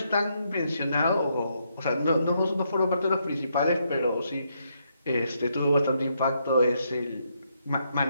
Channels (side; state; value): both; inverted; correlation -0.77